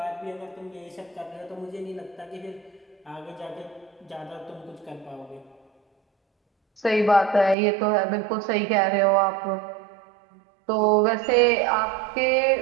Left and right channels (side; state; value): left; drops out; at 7.6 s